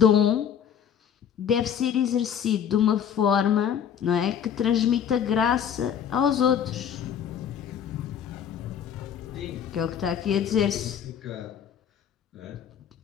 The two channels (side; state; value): right; quieter; 8.5 dB